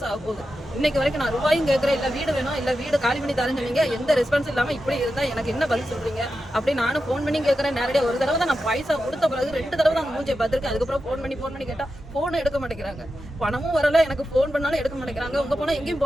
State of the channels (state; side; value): normal; both; correlation 0.90